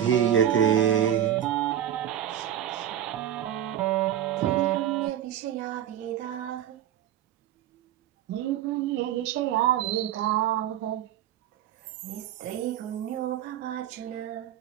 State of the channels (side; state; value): left; quieter; 10.8 dB